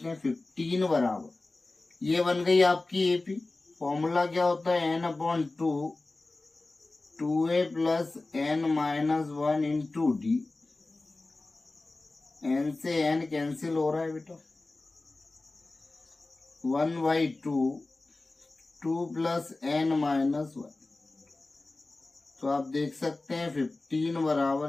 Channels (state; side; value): quieter; right; 3.2 dB